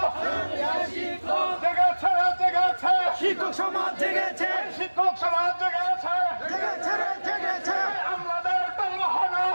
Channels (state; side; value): inverted; both; correlation -1.00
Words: জেগেছে, জেগেছে শিক্ষক সমাজ, জেগেছে শিক্ষক সমাজ, জেগেছে। আমলাদের টাল বাহানা